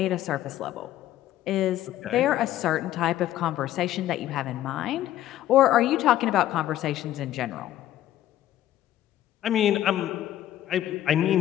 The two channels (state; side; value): quieter; right; 13.1 dB